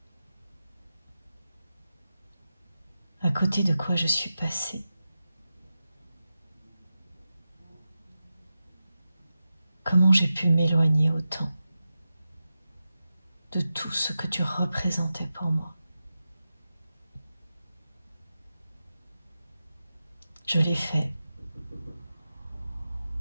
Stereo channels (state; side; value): inverted; both; correlation -0.92